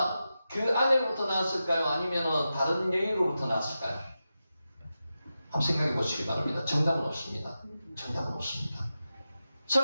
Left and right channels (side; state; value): both; inverted; correlation -0.91